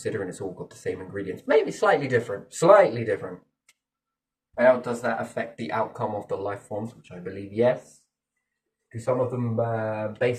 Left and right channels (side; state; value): both; identical; correlation 1.00